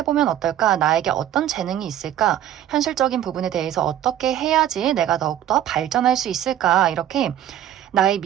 어떨까? 나에게 어떤 재능이 있을까? 현실적인 부분에 대해서 어떻게 해야지 내가 더욱더 발전할 수 있을까? 이렇게 나의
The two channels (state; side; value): quieter; left; 11.4 dB